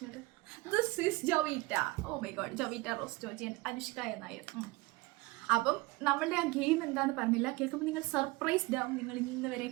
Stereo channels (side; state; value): left; quieter; 22.5 dB